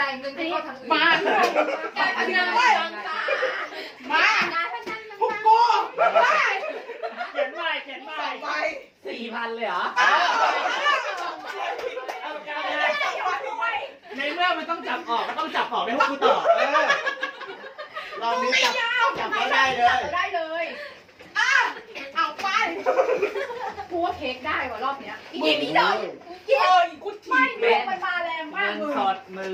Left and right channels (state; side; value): identical; both; correlation 1.00